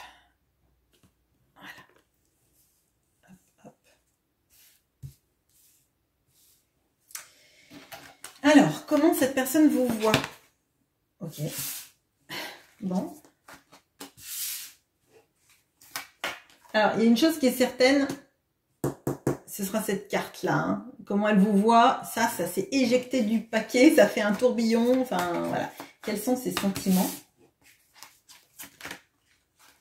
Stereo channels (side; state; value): both; identical; correlation 1.00